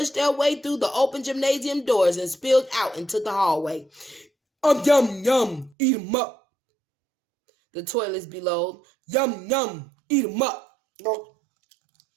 their way through the open gymnasium doors and spilled out into the hallway. Yum, yum, eat 'em up," the toilets bellowed. "Yum, yum, eat 'em up."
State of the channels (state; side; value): drops out; left; at 5.7 s